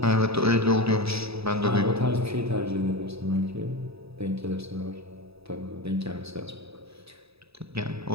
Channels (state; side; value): late; left; 0.78 ms